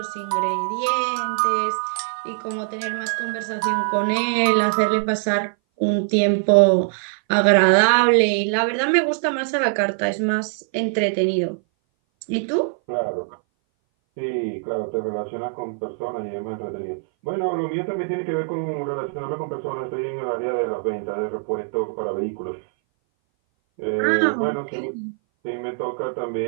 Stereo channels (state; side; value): silent; left; 59 dB below the other